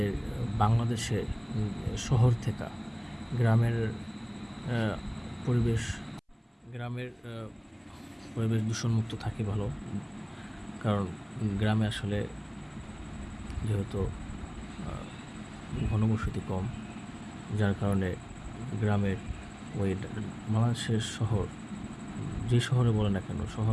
বাংলাদেশে শহর থেকে গ্রামের পরিবেশ দূষণমুক্ত থাকে ভালো। কারণ গ্রামে আসলে যেহেতু ঘনবসতি কম, যার কারণে গ্রামের ওই বাংলাদেশের শহর, যে শহরে বলে না কেন,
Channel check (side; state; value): both; identical; correlation 1.00